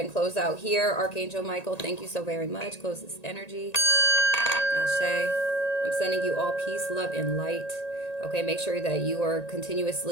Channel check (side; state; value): right; late; 1.9 ms